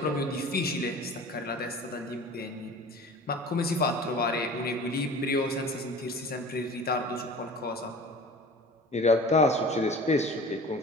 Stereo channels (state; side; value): normal; both; correlation 0.40